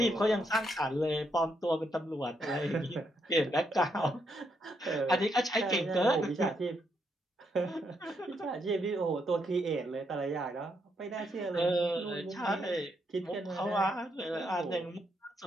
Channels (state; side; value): normal; both; correlation 0.78